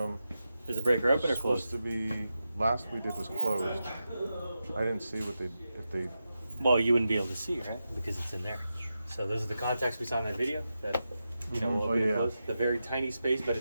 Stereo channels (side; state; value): both; inverted; correlation -0.90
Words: Is the breaker open or It's supposed closed? to be. Last we did was closed. I didn't see what they if they. Well, you wouldn't be able to see, right? Because it's in there. So those are the contacts we saw in that video that, you know, will Oh, open and yeah. close. The very tiny space, but